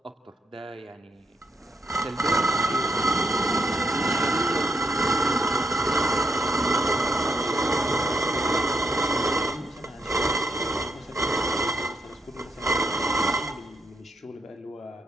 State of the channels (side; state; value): both; normal; correlation 0.80